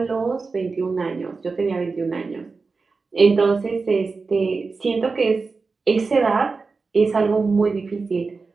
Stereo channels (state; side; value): quieter; left; 4.3 dB